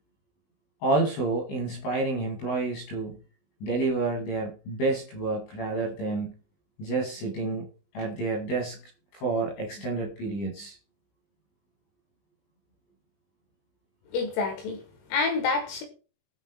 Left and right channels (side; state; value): right; late; 19 ms